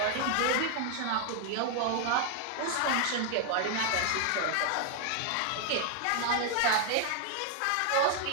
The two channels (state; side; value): different; both; correlation 0.00